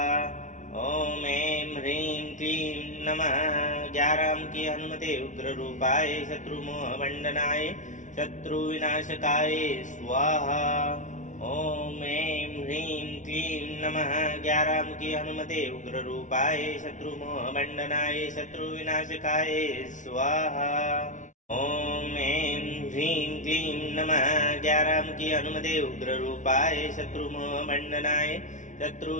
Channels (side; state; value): right; late; 0.37 ms